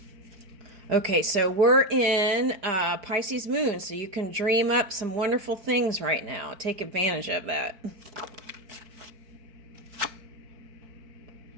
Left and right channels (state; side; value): late; left; 4.5 ms